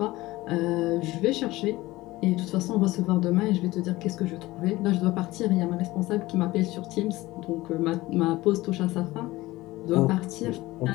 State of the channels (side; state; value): right; quieter; 18.8 dB